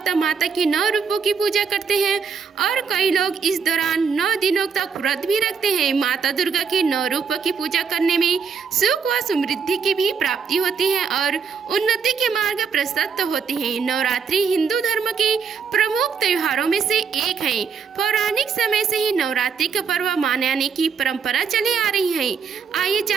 माता के 9 रूपों की पूजा करते हैं और कई लोग इस दौरान 9 दिनों तक व्रत भी रखते हैं। माता दुर्गा के 9 रूपों की पूजा करने में सुख व समृद्धि की भी प्राप्ति होती है और उन्नति के मार्ग प्रशस्त होते हैं। नवरात्रि हिंदू धर्म के प्रमुख त्योहारों में से एक है। पौराणिक समय से ही नवरात्रि का पर्व मनाने की परंपरा चली आ रही है। आइए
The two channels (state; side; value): quieter; left; 6.0 dB